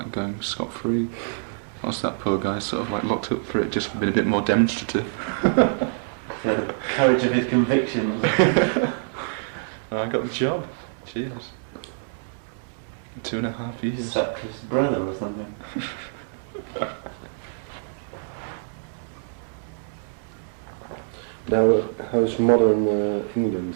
going scot-free. Whilst that poor guy sort of like locked up for it just for being a bit more demonstrative. The courage of his convictions. I got the job. Cheers. 2.5 years. Sutcliffe's brother or something. Now, how's modern England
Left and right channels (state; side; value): silent; left; digital silence